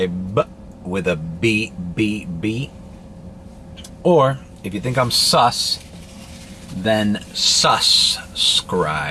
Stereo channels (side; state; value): both; identical; correlation 1.00